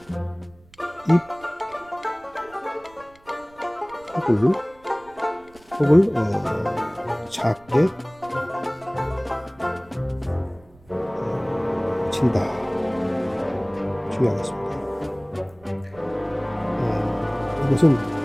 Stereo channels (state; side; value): noise; right; rumble, 27 dB below the sound